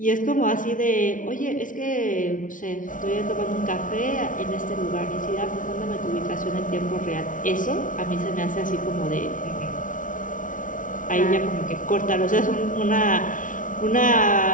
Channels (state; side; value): late; right; 0.38 ms